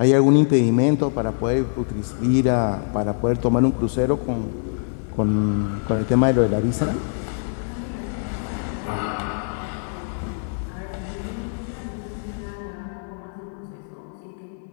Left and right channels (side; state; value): right; silent; 63 dB below the other